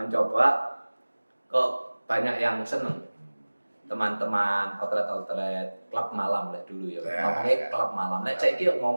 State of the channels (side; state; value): both; inverted; correlation -1.00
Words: kok banyak yang seneng. Teman-teman outlet klub malam lah dulu ya. Ya, Ngomongnya ya. klub malam. Nek saiki